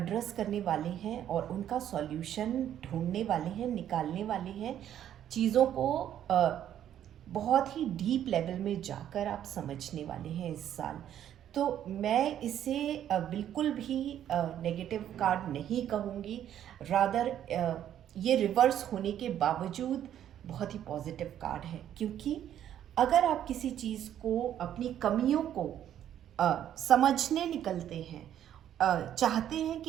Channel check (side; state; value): left; quieter; 10.6 dB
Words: करने वाले हैं और उनका सॉल्यूशन ढूंढने वाले हैं, निकालने वाले हैं। चीज़ों को बहुत ही डीप लेवल में जाकर आप समझने वाले हैं इस साल। तो मैं इसे बिल्कुल भी नेगेटिव कार्ड नहीं कहूँगी, रादर ये रिवर्स होने के बावजूद बहुत ही पॉजिटिव कार्ड है। क्योंकि अगर आप किसी चीज़ को, अपनी कमियों को समझने निकलते हैं, चाहते हैं